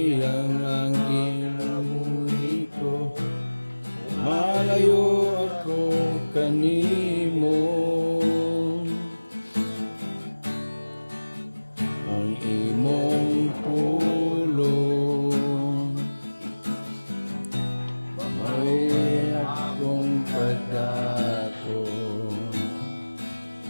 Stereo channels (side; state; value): both; inverted; correlation -1.00